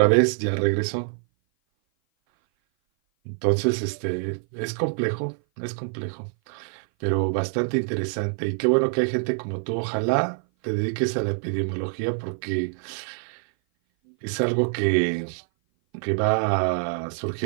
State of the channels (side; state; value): left; silent; 57 dB below the other